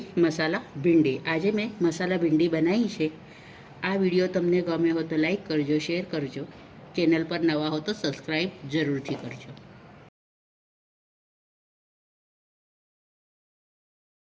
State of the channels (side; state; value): both; identical; correlation 1.00